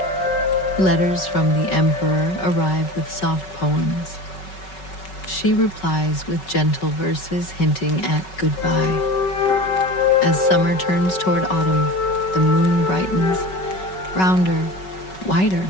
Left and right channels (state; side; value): late; right; 5.3 ms